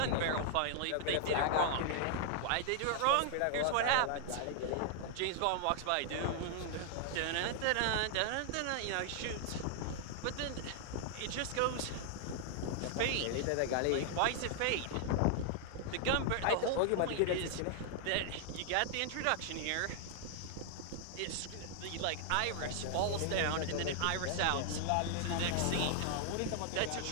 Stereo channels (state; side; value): different; both; correlation 0.00